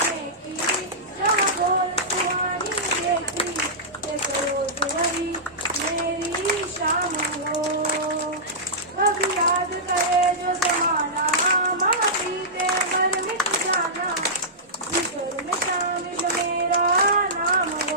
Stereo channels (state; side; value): normal; both; correlation -0.15